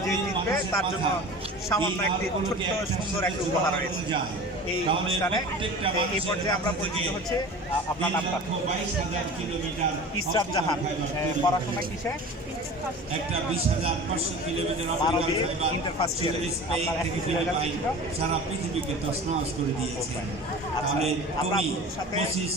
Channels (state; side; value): normal; both; correlation 0.37